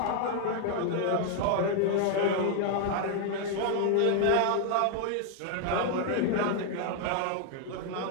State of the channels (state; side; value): different; both; correlation 0.00